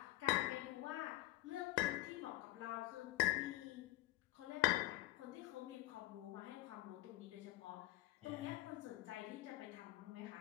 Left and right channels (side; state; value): right; quieter; 17.9 dB